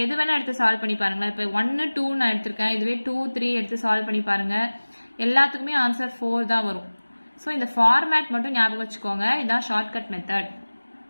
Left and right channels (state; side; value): inverted; both; correlation -1.00